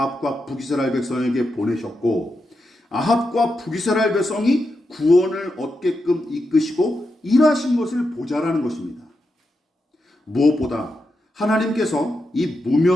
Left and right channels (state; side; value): normal; both; correlation 0.86